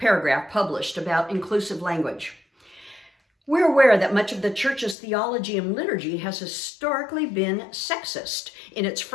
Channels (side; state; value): right; drops out; at 5.0 s